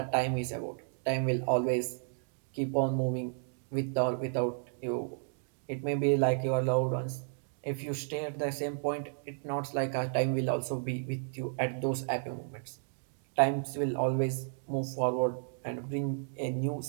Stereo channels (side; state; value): left; silent; digital silence